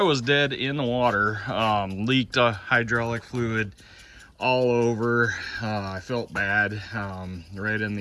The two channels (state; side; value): identical; both; correlation 1.00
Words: was dead in the water, leaked hydraulic fluid all over. I felt bad, right in